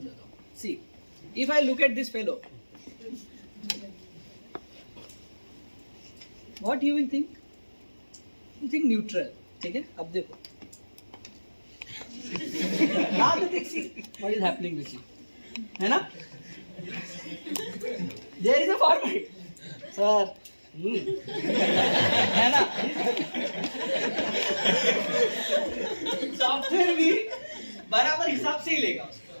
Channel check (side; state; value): both; inverted; correlation -1.00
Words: हूँ। See, if I look at this fellow, what you will think? You think neutral, ठीक है? अब देखो, now the thing, see what is happening with you, है ना? There is a format, sir. है ना? सॉफ्टवेयर भी बराबर हिसाब से ही लेगा